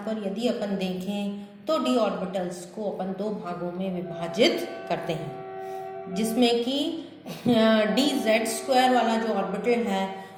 पर यदि अपन देखें तो डी ऑर्बिटल्स को अपन दो भागों में विभाजित करते हैं, जिसमें कि डी जेड स्क्वायर वाला जो ऑर्बिटल है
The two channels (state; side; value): identical; both; correlation 1.00